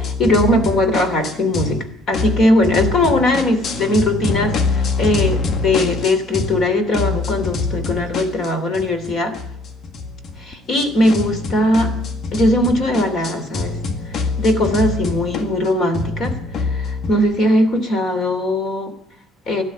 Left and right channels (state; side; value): normal; both; correlation 0.60